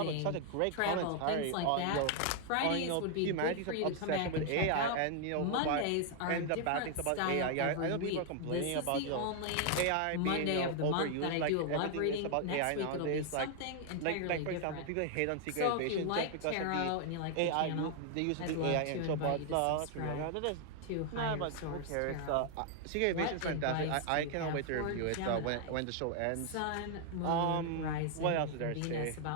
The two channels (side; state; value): both; different; correlation 0.00